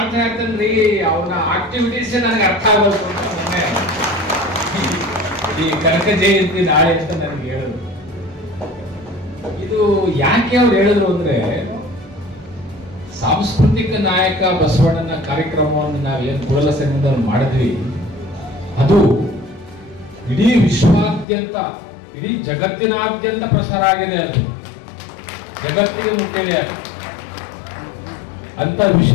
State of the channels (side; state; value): right; drops out; at 21.2 s